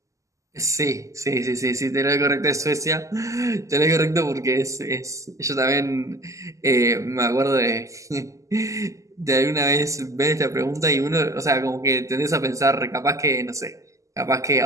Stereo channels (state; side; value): late; left; 0.16 ms